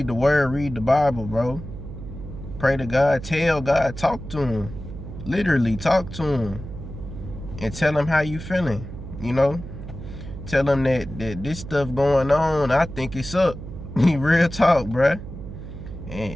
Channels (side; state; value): right; noise; hum, 11 dB below the sound